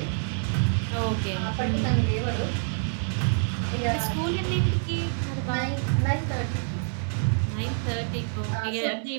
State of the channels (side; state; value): left; silent; 60 dB below the other